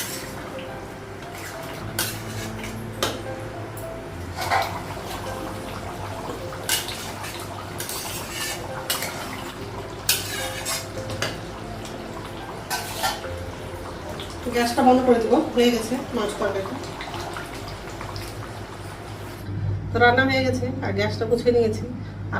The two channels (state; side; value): identical; both; correlation 1.00